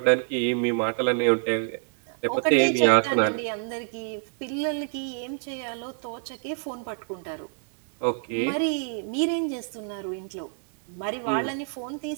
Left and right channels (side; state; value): left; silent; 57 dB below the other